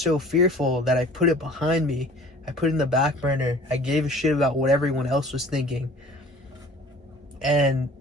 fearful that I put it behind me. I put it in the back burner. I gave a shit about what everyone else was thinking. And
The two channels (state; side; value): normal; both; correlation 0.47